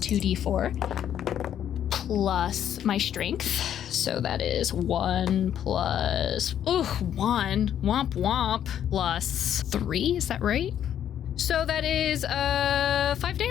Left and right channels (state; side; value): quieter; right; 10.0 dB